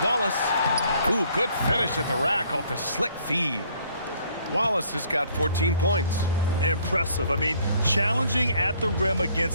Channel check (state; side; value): inverted; both; correlation -0.62